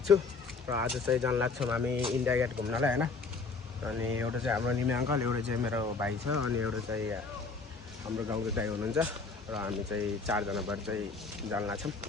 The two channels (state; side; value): quieter; right; 4.3 dB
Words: छु। र आज चाहिँ जान लाग्छौँ हामी इन्डिया गेट घुम्नलाई होइन। अनि एउटा चाहिँ हाम्रो निमे अङ्कल, एउटा चाहिँ मेरो भाइ छ, अनि एउटा चाहिँ हाम्रो गाउँको दाइ हुनुहुन्छ। र हामी चाहिँ चारजना भएर चाहिँ जान लाग्छौँ।